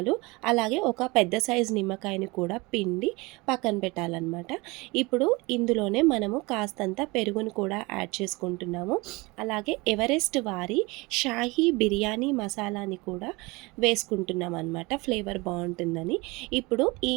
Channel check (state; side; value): quieter; left; 24.5 dB